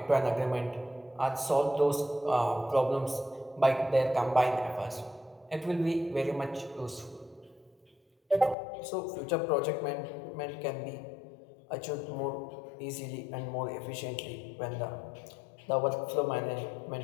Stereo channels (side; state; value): right; drops out; at 8.6 s